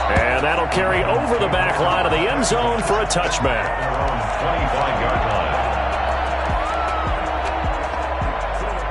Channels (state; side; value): identical; both; correlation 1.00